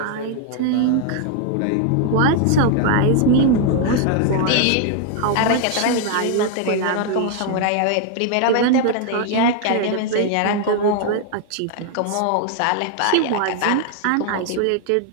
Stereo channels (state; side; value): different; both; correlation 0.00